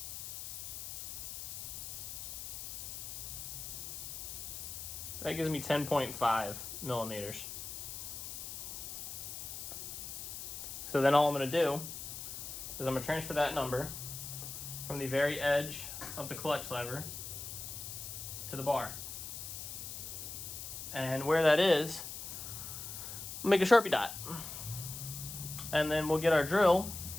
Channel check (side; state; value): left; noise; hiss, 8 dB below the sound